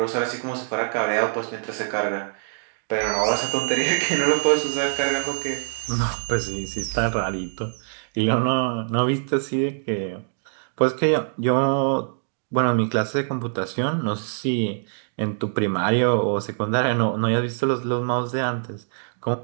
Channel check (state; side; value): silent; left; digital silence